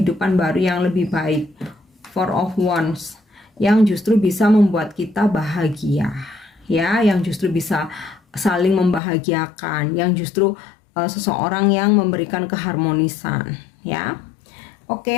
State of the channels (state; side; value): drops out; right; at 9.0 s